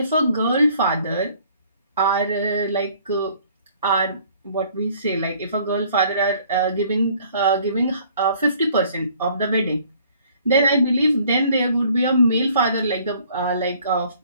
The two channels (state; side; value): inverted; both; correlation -0.58